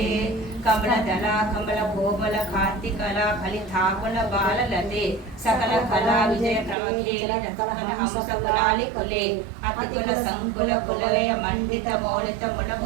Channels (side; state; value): left; drops out; at 6.8 s